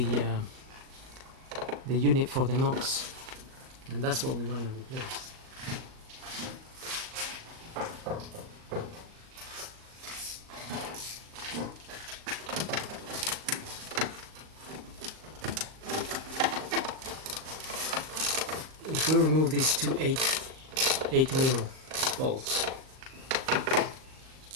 unit for the NOx, and that's what we want to replace. If we remove these two 8mm bolts,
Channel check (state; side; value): late; left; 38 ms